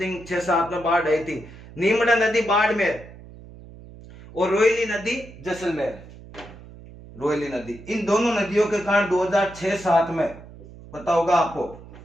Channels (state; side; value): noise; right; hum, 18 dB below the sound